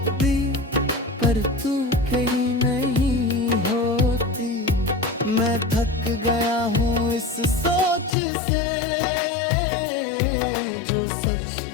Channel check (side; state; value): right; drops out; at 8.1 s